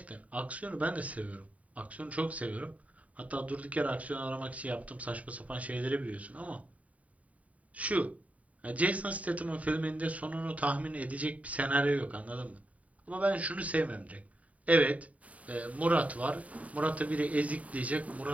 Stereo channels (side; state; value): left; late; 0.069 ms